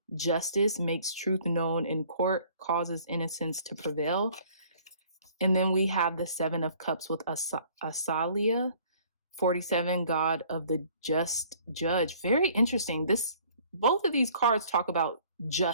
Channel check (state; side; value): inverted; both; correlation -0.55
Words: Justice makes truth known in court, causes innocence to prevail. And then we have the Seven of Cups with Asalia, 47, God of the just judge. Very interesting. Both of these cards talk about